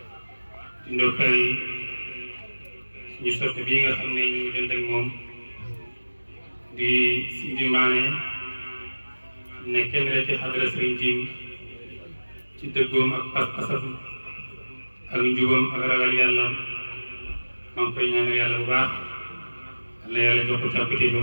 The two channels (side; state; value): both; inverted; correlation -1.00